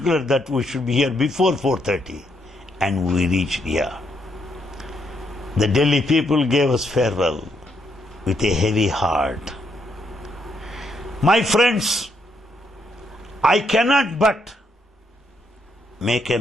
that we should be here before 4:30, and we reached here. The Delhi people gave us farewell with a heavy heart. My friends, I cannot but make a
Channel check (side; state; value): both; normal; correlation 0.76